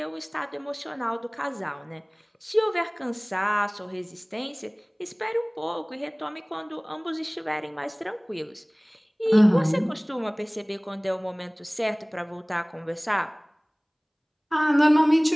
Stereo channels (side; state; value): both; identical; correlation 1.00